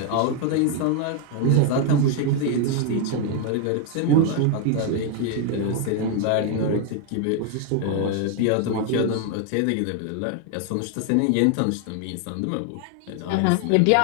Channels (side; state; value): both; different; correlation 0.01